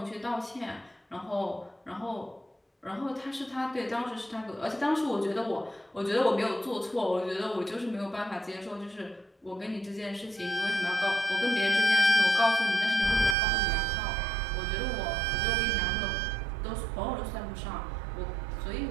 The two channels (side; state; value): left; drops out; at 13.4 s